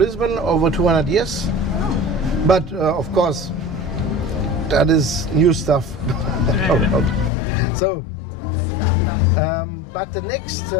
over 200 years. But of course, that is new stuff. So, but the next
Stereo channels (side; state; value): right; drops out; at 7.3 s